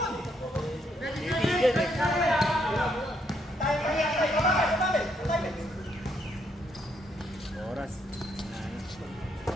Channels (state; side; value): normal; both; correlation 0.74